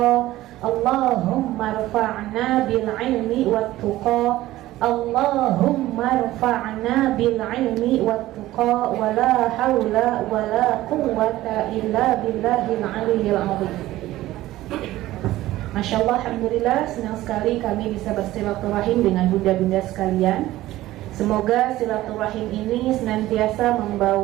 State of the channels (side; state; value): left; quieter; 15.9 dB